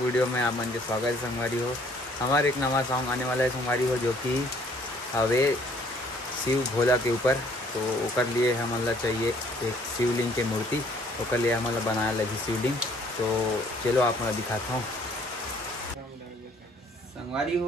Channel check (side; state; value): both; normal; correlation 0.60